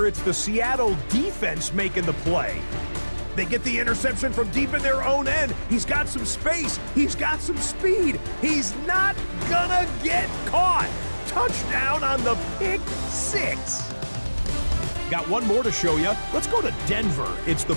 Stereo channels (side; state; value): both; inverted; correlation -1.00